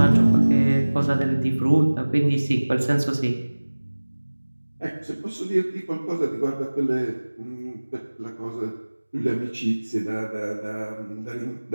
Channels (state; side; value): inverted; both; correlation -1.00